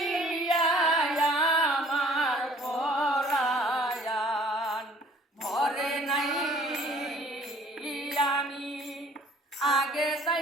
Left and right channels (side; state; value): both; normal; correlation 0.54